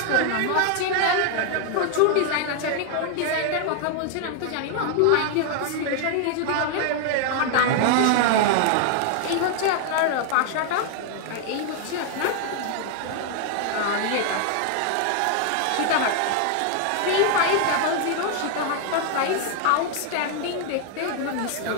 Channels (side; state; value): both; different; correlation 0.00